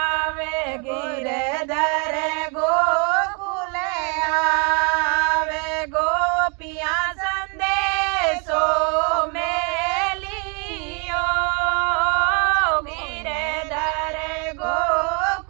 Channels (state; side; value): quieter; left; 35.4 dB